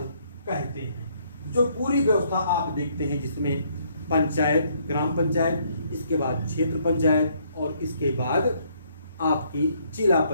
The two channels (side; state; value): both; inverted; correlation -0.68